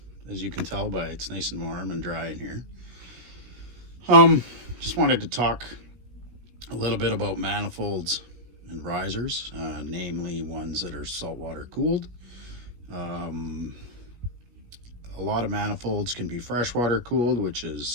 As you can tell by it's nice and warm and dry in here. Just wanted to talk a little bit about manifolds and risers, namely ones that are saltwater cooled. A lot of manifolds can be freshwater cooled, which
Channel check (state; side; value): late; left; 17 ms